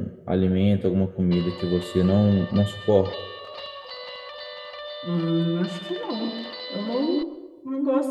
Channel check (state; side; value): identical; both; correlation 1.00